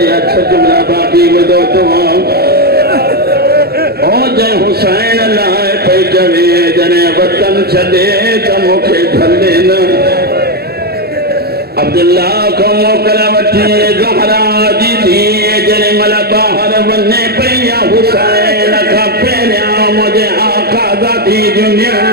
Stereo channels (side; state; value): left; late; 0.46 ms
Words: अच्छा जुमला बाकी बदो तो ओ जय हुसैन लाए पे जवे जने वतन छदे त मुखे धले न अब्दुल्ला को मोकला वठी ज़हरा जी थी जने मल बाहर वने पया हुसैन का पेरिया मुझे आका ज़ाती दुनिया